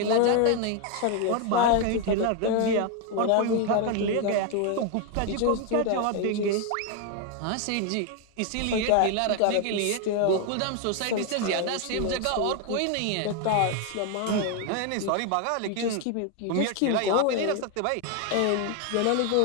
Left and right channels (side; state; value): both; different; correlation 0.01